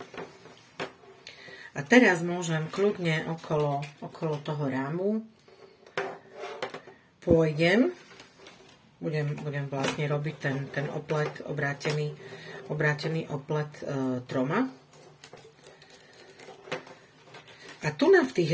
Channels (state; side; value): identical; both; correlation 1.00